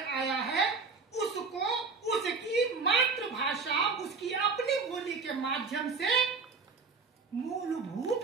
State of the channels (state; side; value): quieter; left; 4.6 dB